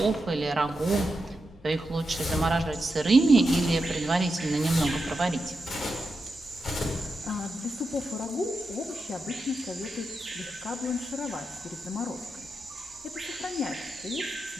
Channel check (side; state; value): both; normal; correlation 0.88